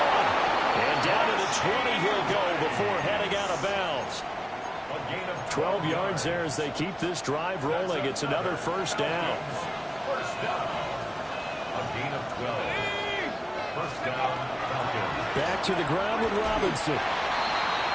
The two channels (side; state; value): both; identical; correlation 1.00